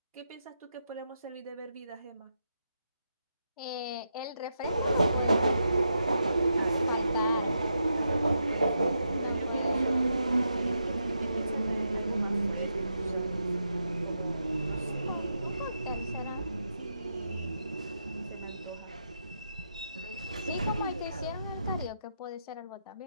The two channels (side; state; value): both; inverted; correlation -0.84